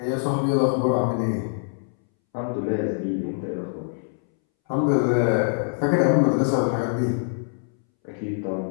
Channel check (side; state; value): right; silent; 62 dB below the other